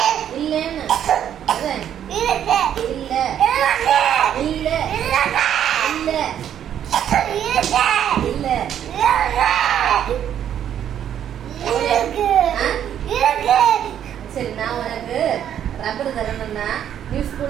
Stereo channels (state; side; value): quieter; left; 9.9 dB